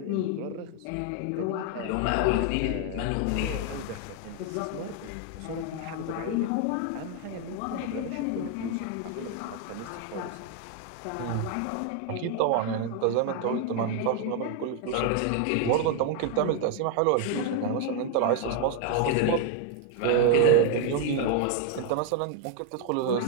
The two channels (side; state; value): both; different; correlation 0.01